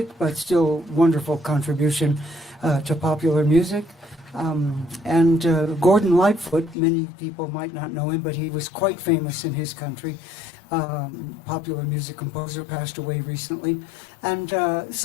but still wonderful contribution to popular music. And Gordon Lightfoot, many people might not know him, but he was quite famous in his country. Popular music composer, passed away recently. And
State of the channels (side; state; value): right; drops out; at 6.8 s